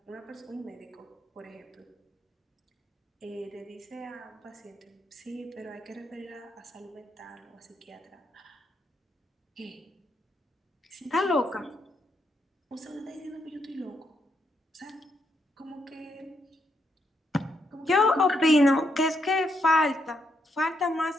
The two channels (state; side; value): normal; both; correlation 0.78